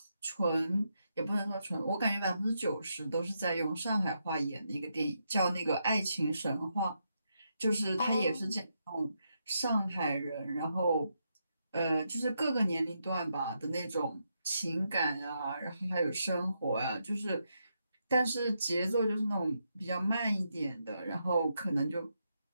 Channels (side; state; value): both; inverted; correlation -0.82